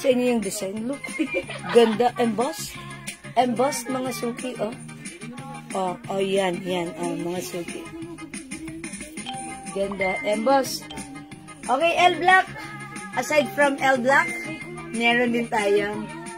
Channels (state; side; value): identical; both; correlation 1.00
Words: sa inyo yung design. Look. Ganda. Embossed. Embossed, mga suki, oh. Oh, yan, mga suki. Ganda. Embossed. Okay, L black. Aside from L black, meron din tayong